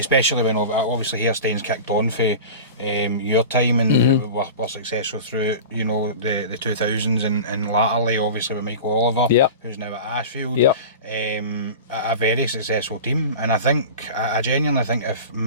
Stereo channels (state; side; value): inverted; both; correlation -0.33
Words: when obviously Hairstains kicked on for your time and were successful through, you know, the 2000s and latterly obviously with Michael Oliver, who's now at Ashfield. A very successful team, and I genuinely think if